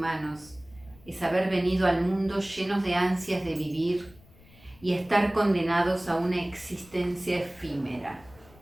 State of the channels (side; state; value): left; noise; rumble, 25 dB below the sound